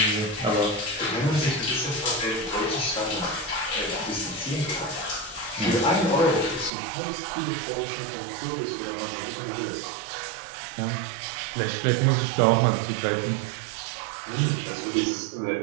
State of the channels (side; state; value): left; drops out; at 6.7 s